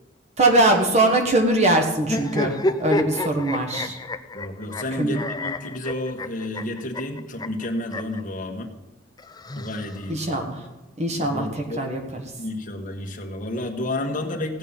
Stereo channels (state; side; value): normal; both; correlation 0.23